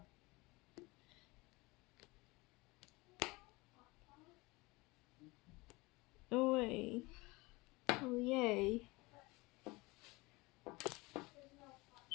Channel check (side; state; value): right; quieter; 23.5 dB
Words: Oh wait. Oh yay.